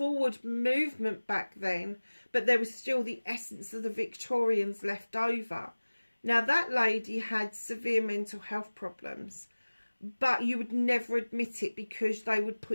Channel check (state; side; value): inverted; both; correlation -1.00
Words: movement back then, but there was still the essence of the Victorians left over. Now, that lady had severe mental health problems, but you would never admit it because they would